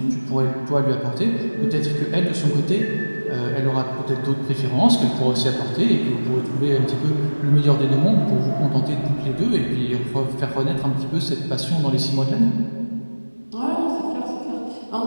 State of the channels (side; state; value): both; inverted; correlation -1.00